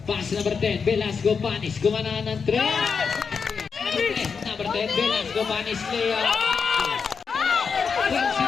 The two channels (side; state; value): right; quieter; 5.7 dB